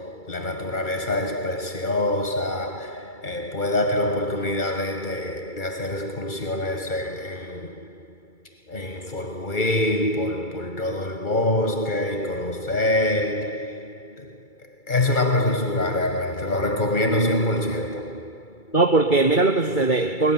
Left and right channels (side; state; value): right; late; 2.3 ms